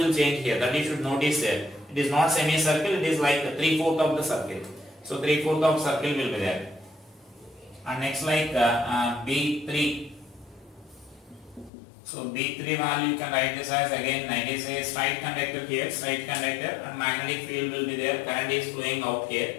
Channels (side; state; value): right; drops out; at 11.7 s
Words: change here, that you should notice there. It is not semicircle, it is like 3/4 of the circle. So 3/4 of circle will be there. And next like B3. So B3 value you can write this as again it is a straight conductor here, straight conductor, and magnetic field will be there, current is flowing out